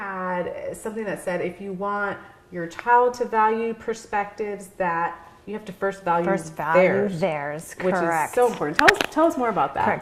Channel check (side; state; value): both; identical; correlation 1.00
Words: something that said, if you want your child to value perspectives, that you have to first value theirs, which is so important. Tell us more about that.